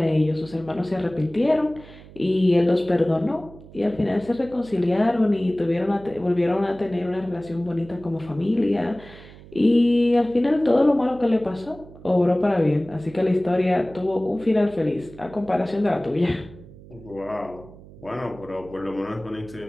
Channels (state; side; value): noise; right; hum, 20 dB below the sound